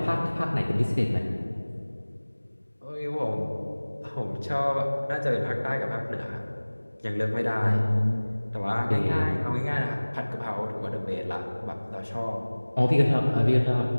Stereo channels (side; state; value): both; inverted; correlation -1.00